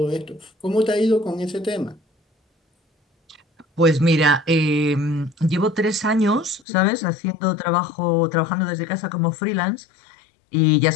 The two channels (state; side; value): drops out; right; at 6.7 s